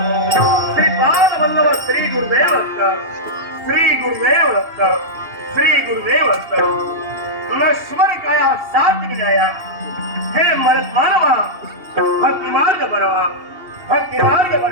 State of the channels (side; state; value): left; late; 2.8 ms